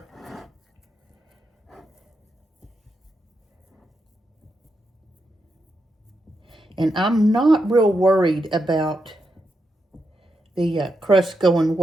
And I'm not real worried about the crust going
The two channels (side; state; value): both; normal; correlation 0.84